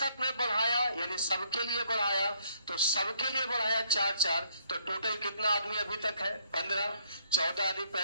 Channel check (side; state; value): both; inverted; correlation -0.68